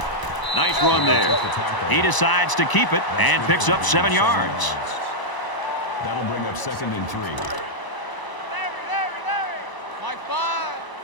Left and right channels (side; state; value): right; late; 1.0 ms